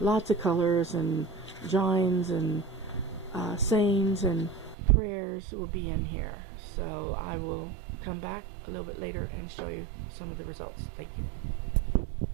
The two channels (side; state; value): left; drops out; at 4.8 s